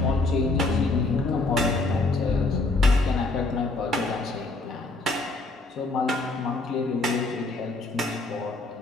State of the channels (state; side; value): quieter; right; 3.2 dB